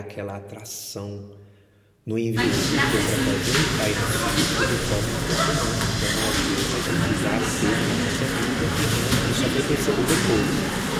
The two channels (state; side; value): identical; both; correlation 1.00